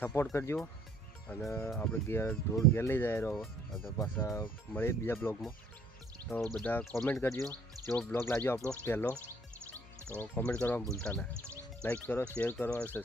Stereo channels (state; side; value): normal; both; correlation 0.61